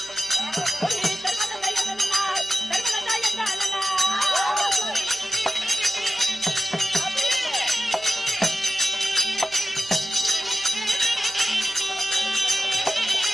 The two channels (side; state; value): left; noise; hum, 27 dB below the sound